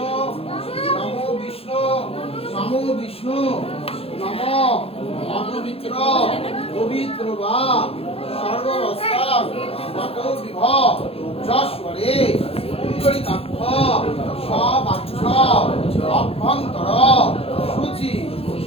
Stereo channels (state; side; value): late; right; 0.28 ms